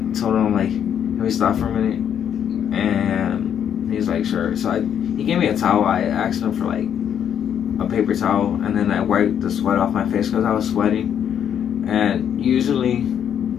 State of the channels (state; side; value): quieter; right; 8.9 dB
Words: told him, like, can we stop for a minute? And he's like, sure. So he gave me a towel. I asked him for like a paper towel, and then I wiped the sweat off my face because I was sweating. And usually